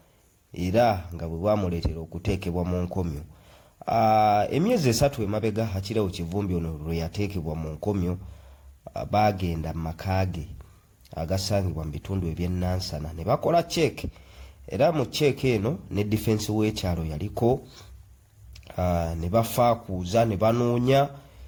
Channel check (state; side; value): identical; both; correlation 1.00